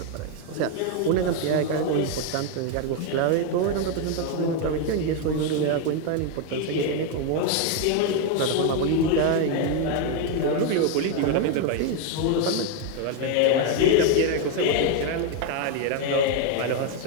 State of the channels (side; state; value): both; different; correlation 0.01